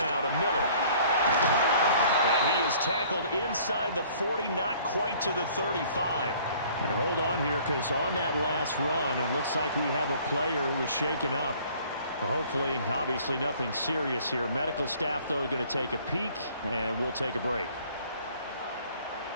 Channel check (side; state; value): both; inverted; correlation -0.55